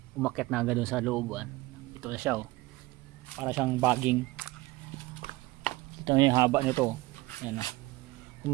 umakyat na agad dun sa looban. Ito na siya oh. Para siyang bagging. Ito na yung haba nito. Ayan oh.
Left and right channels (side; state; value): left; quieter; 20.1 dB